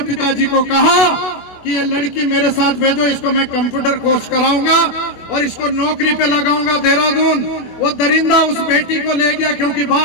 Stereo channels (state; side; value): late; right; 25 ms